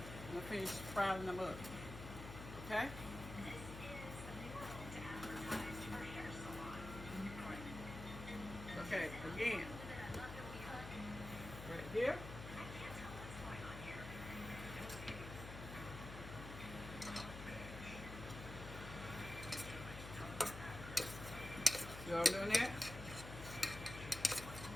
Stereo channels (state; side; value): noise; left; hum, 9 dB below the sound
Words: finished frying them up. Okay? Okay, again, right here. See what I'm doing there?